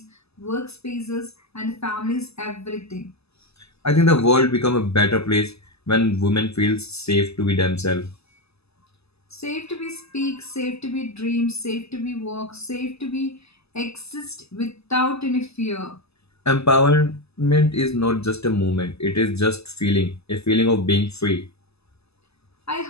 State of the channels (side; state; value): right; late; 0.79 ms